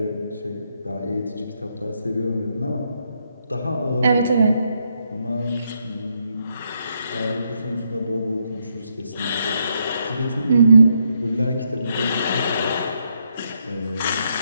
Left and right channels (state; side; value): inverted; both; correlation -0.77